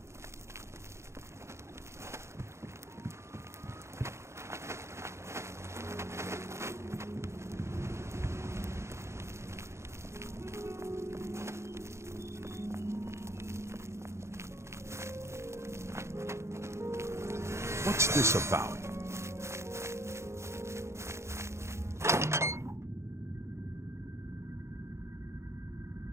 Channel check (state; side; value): late; left; 0.13 ms